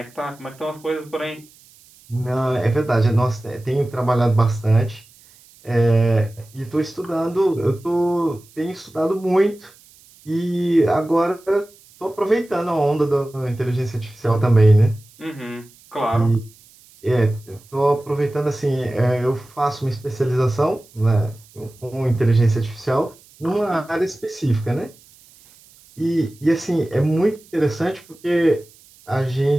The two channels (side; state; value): right; noise; hiss, 27 dB below the sound